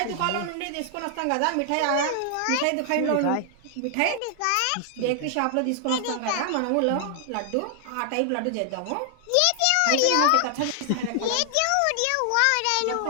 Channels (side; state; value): both; different; correlation 0.00